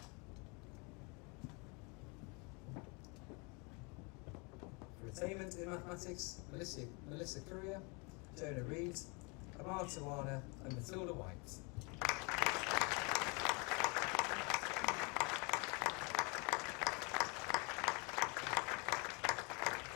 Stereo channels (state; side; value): quieter; right; 30.9 dB